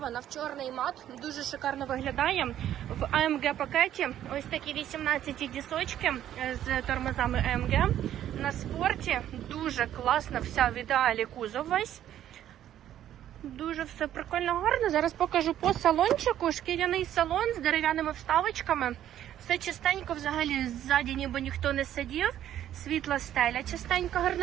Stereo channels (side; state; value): left; quieter; 11.4 dB